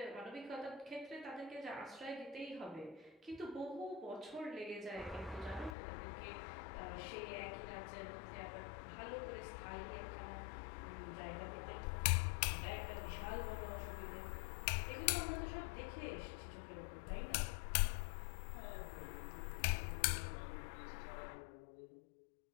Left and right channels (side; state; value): right; drops out; at 5.8 s